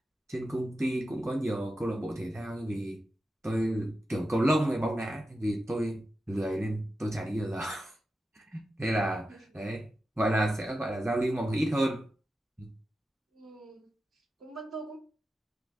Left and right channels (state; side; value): normal; both; correlation 0.91